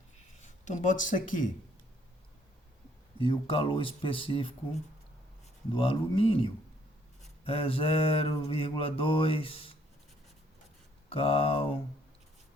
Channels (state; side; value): normal; both; correlation 0.66